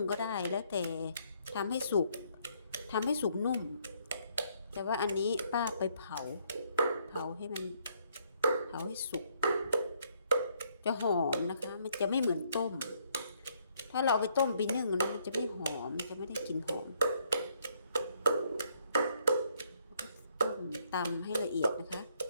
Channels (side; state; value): both; inverted; correlation -0.69